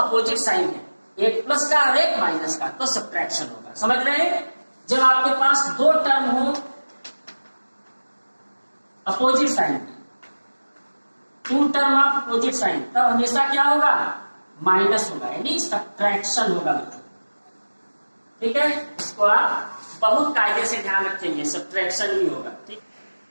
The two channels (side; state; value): both; inverted; correlation -1.00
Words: साइन है, एक प्लस का और एक माइनस का, तो सब्ट्रैक्शन होगा। समझ रहे हैं, जब आपके पास 2 टर्म हो opposite sign, two term of opposite sign, तब हमेशा क्या होगा, माइनस होगा, यानी सब्ट्रैक्शन होगा बच्चों। ठीक है, इसको आप बहुत कायदे से ध्यान रखेंगे, सब्ट्रैक्शन ही होगा। ठीक,